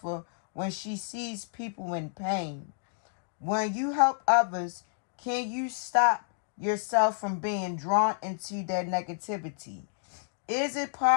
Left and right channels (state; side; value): silent; right; digital silence